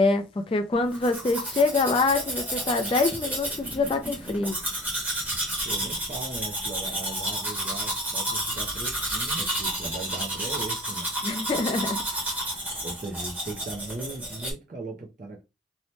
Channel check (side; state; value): both; normal; correlation 0.41